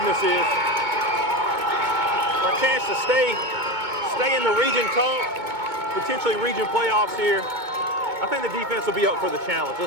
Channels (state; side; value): late; left; 2.2 ms